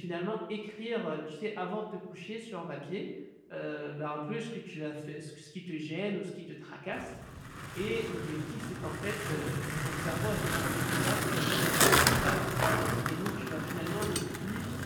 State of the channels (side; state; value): both; identical; correlation 1.00